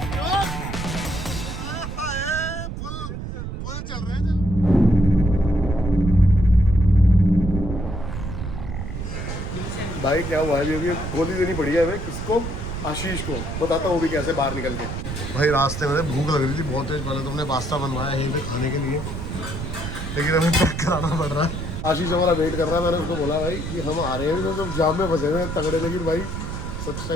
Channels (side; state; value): right; noise; rumble, 6 dB below the sound